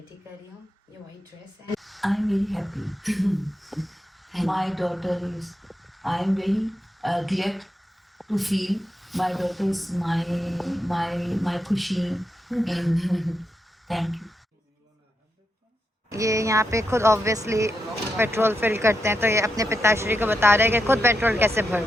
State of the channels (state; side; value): normal; both; correlation 0.85